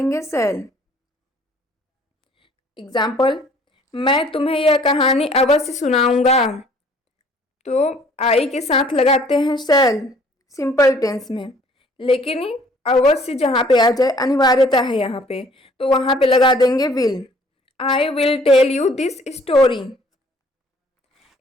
सेल। एग्जाम्पल, मैं तुम्हें यह कहानी अवश्य सुनाऊंगा, तो आई के साथ लगाते हैं सेल सिंपल टेंस में, लेकिन अवश्य जहाँ पे आ जाए अनिवार्यता है यहाँ पे, तो वहाँ पे लगा देंगे will. I will tell you this story.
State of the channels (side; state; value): both; normal; correlation 0.57